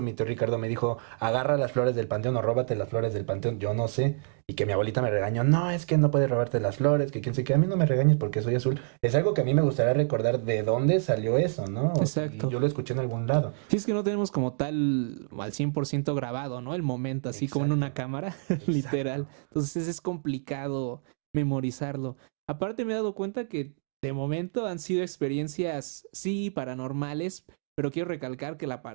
mi tío Ricardo me dijo, agarra las flores del panteón o róbate las flores del panteón, yo no sé, y que mi abuelita me regañó, no, es que no puedes robarte las flores, que quién sé qué, a mí no me regañes porque soy azul. Es algo que a mí me gustaría recordar de dónde salió eso, ¿no? O si Exacto. yo lo escuché en algún lado. Sí, es que no tenemos como tal al 100% grabado, ¿no? El momento, así como en una Exacto, cámara, literal. exacto. Entonces es complicado memorizarlo. Aparte me he dado cuenta que de momento han sido experiencias, sí, paranormales, pero quiero recalcar que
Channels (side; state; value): left; silent; digital silence